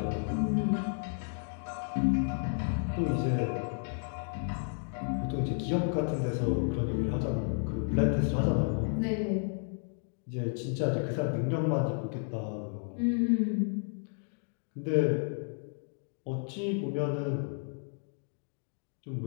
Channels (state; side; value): silent; right; 56 dB below the other